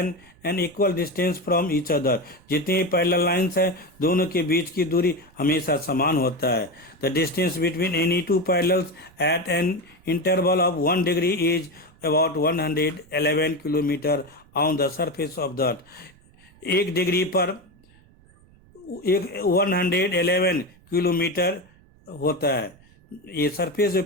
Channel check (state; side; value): noise; right; rumble, 28 dB below the sound